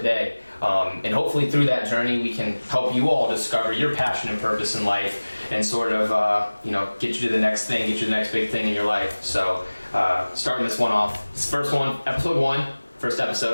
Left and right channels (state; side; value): inverted; both; correlation -1.00